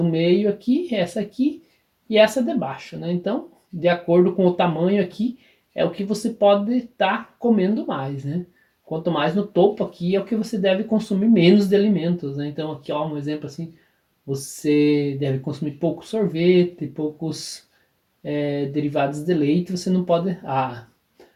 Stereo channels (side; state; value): both; identical; correlation 1.00